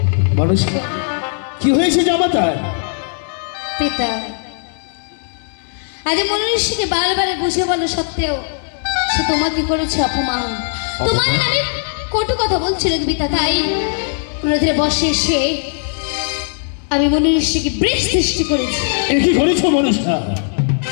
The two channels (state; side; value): silent; right; 68 dB below the other